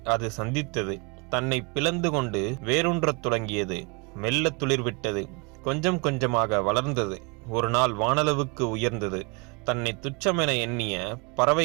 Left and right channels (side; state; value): left; quieter; 31.0 dB